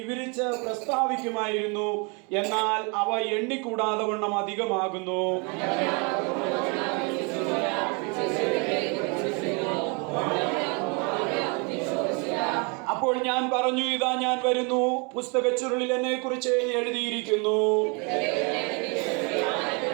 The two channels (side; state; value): left; quieter; 33.0 dB